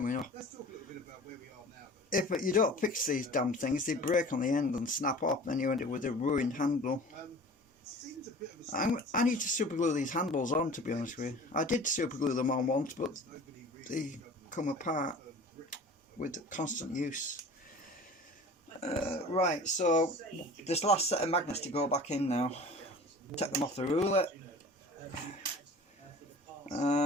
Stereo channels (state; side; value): normal; both; correlation 0.41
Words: off. Let's talk a little bit about where we are now, If though. you don't fix these damn things, they break on the end and snap off, and you end up with a ruined handle. Seems a bit of a I need to superglue these handles on, to be honest with you. I did superglue them on once, but they come apart with constant use. Right, so this last set of magnets to go back in now. Take them off the ruler.